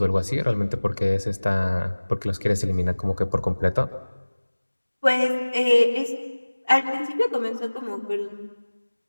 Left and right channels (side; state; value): both; inverted; correlation -1.00